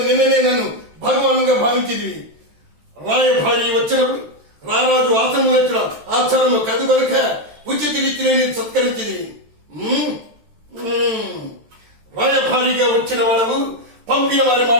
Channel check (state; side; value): late; left; 13 ms